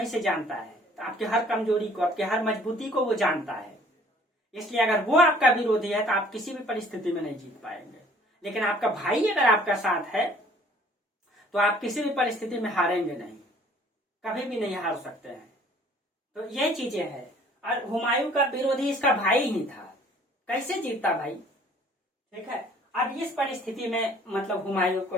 से जानता है, तो आपके हर कमजोरी को, आपके हर मजबूती को वो जानता है। इसलिए अगर वो आपका विरोधी है तो आप किसी भी परिस्थिति में नहीं जीत पाएंगे। लेकिन आपका भाई अगर आपका साथ है तो आप किसी भी परिस्थिति में हारेंगे नहीं, कभी भी नहीं हार सकते हैं। तो ये चीजें हैं। और हुमायूं का विरोधी इसका भाई ही था, कैसे जीतता भाई? ठीक है, अब इस परिस्थिति में मतलब हुमायूं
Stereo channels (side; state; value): both; normal; correlation 0.55